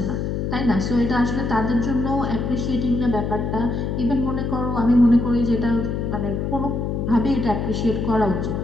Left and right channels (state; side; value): noise; left; hum, 2 dB below the sound